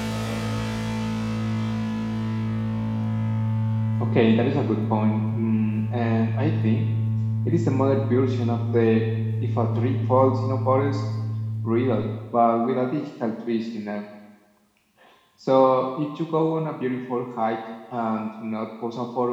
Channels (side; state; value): both; identical; correlation 1.00